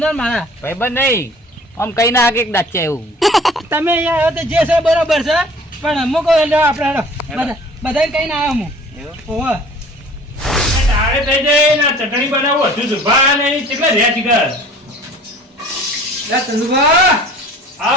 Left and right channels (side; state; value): both; normal; correlation 0.48